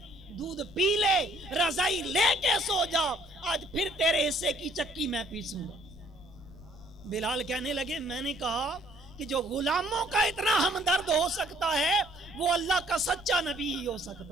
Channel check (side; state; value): left; noise; rumble, 20 dB below the sound